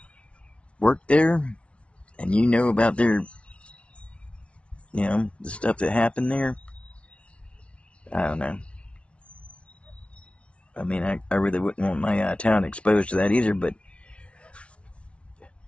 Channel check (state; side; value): late; right; 0.061 ms